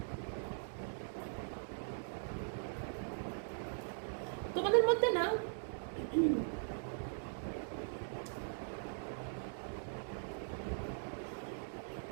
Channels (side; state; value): left; silent; digital silence